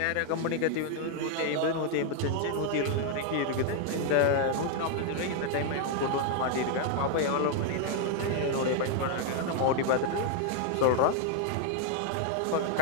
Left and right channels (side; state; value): both; different; correlation 0.00